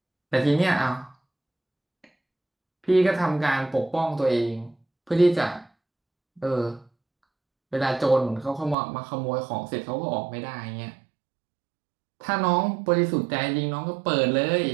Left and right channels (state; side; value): drops out; left; at 8.8 s